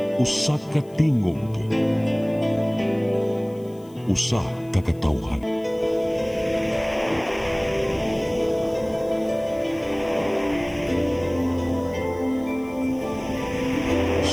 usa ka tingog, usa ka katawhan.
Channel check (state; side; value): noise; left; hiss, 28 dB below the sound